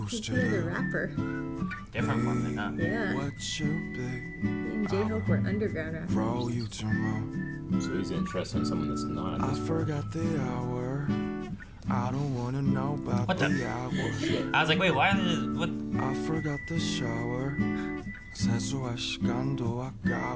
used to He's a do. rapper. Different from the huh? Yeah. What you be? Me and J-Hope were underground rappers. Roll you to moon. So he's interested in someone that's not. I forgot the hour. I don't wanna know about What the- the hour. I was like, wait, why did what? I forgot the shower. 세수할 시간도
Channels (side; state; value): both; identical; correlation 1.00